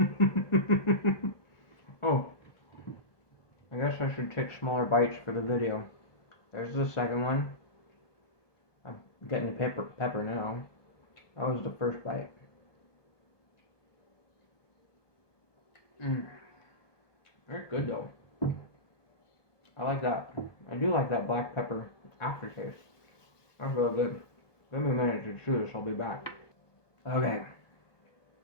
Oh, I guess I should take smaller bites for the video. There's the second one. I'm getting the pepper now. That was the first bite. Very good though. I like that. I do like that black pepper aftertaste. That's real good. Let me manage to chew this, I'll be back. Okay.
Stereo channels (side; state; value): right; late; 1.2 ms